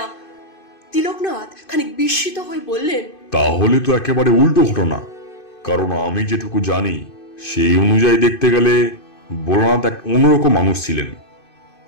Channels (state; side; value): late; right; 2.5 ms